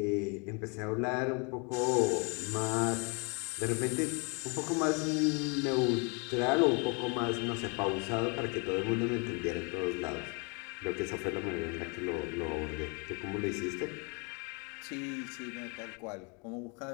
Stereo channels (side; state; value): right; quieter; 33.8 dB